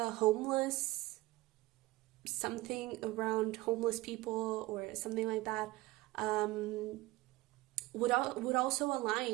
homeless, something around homeless people or something like that, would also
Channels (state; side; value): quieter; left; 19.1 dB